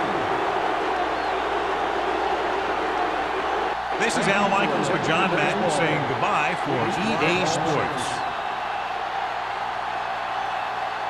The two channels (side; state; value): both; identical; correlation 1.00